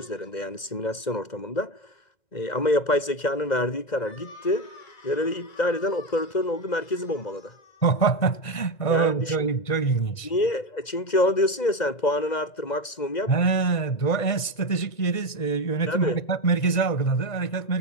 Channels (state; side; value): late; right; 1.9 ms